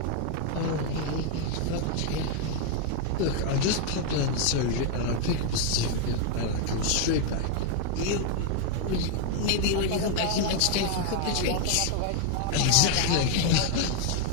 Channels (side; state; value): both; different; correlation 0.01